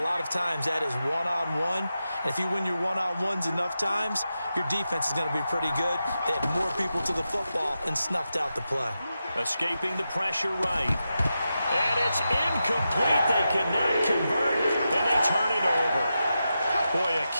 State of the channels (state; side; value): inverted; both; correlation -0.89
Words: lot of times that is one-on-one. And if you win your one-on-ones enough times, your defense is going to be pretty good. They had more people to the football and snuffed out the play. Escaping the pressure right. And it's incomplete. They cannot convert, and they turn it over. Boy, a